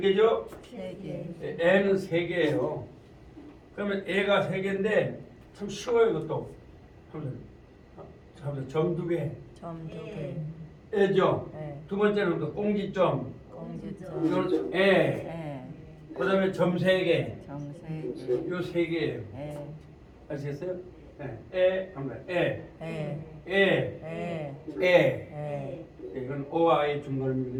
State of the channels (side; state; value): both; identical; correlation 1.00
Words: 3개, 애는 3개예요. 그러면 애가 3개인데 참 쉬워요, 이것도. 점 2개. 점 2개, 애죠. 네. 두 번째는 또 공지점. 공지점, 이건 애. 애, 그다음에 점 3개. 점 3개, 요 3개예요. 애, 아시겠어요? 애, 한번 애. 애, 애. 애, 애. 애, 이건 O와 A의